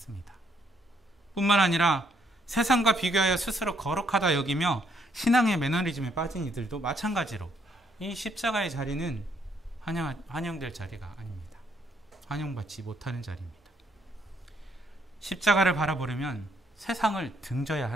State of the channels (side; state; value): both; normal; correlation 0.71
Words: 뿐만 아니라 세상과 비교하여 스스로 거룩하다 여기며 신앙의 매너리즘에 빠진 이들도 마찬가지로 이 십자가의 자리는 환영될 자리가 아닙니다. 환영받지 못하는 자리입니다. 십자가를 바라보려면 세상을 등져야